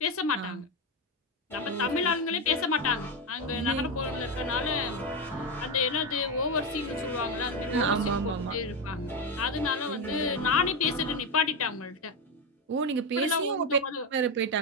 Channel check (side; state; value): both; normal; correlation 0.11